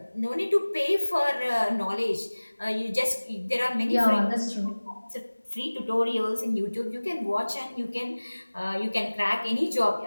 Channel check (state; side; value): inverted; both; correlation -1.00